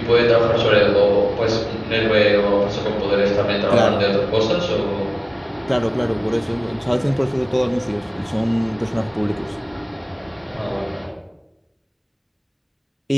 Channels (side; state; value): both; identical; correlation 1.00